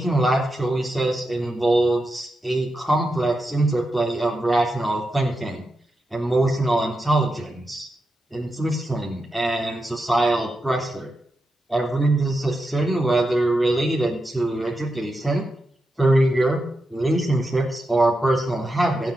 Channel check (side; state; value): both; normal; correlation 0.88